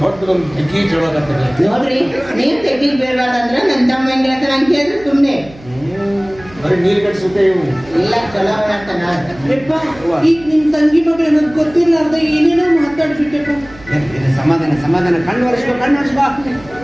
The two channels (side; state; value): right; noise; hum, 21 dB below the sound